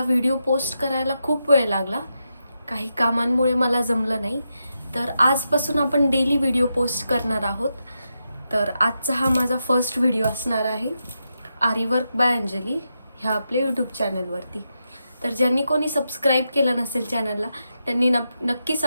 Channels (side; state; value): both; inverted; correlation -0.86